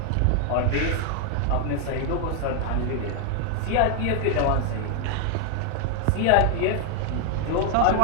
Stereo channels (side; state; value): both; different; correlation 0.00